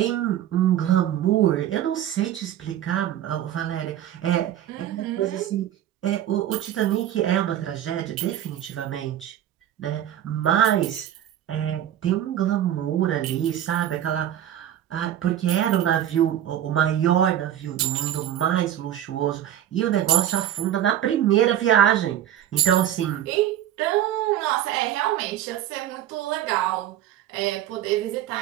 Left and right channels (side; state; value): left; quieter; 11.4 dB